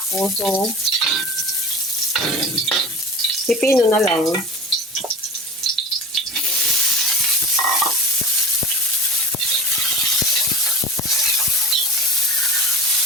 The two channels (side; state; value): both; normal; correlation 0.36